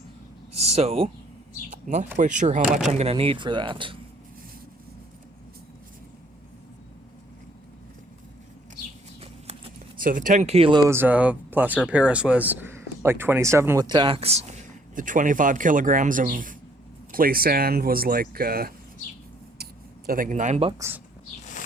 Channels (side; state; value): both; normal; correlation 0.63